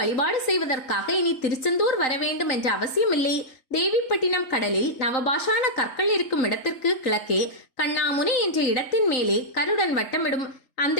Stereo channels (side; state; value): right; late; 3.9 ms